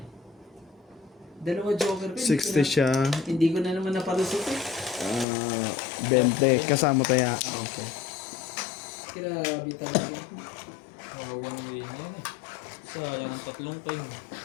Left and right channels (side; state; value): right; drops out; at 5.2 s